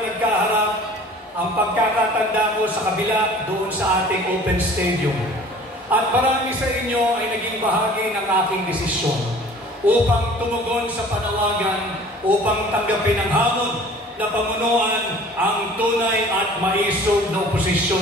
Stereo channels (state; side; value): normal; both; correlation 0.47